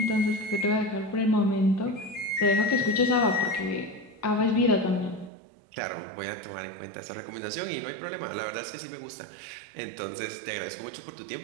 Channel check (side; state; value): left; drops out; at 5.3 s